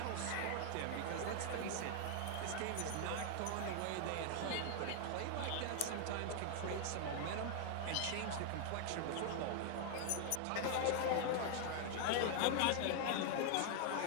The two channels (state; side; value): different; both; correlation 0.00